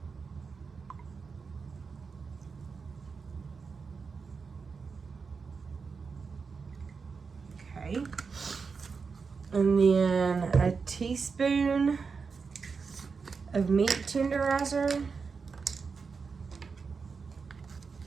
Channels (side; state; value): left; quieter; 5.2 dB